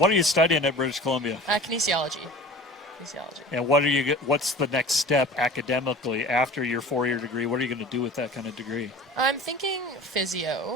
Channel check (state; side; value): normal; both; correlation 0.39